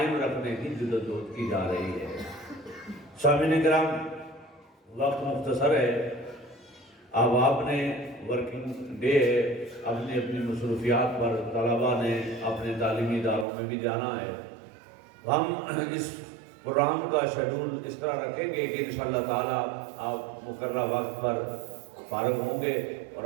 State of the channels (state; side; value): drops out; left; at 13.5 s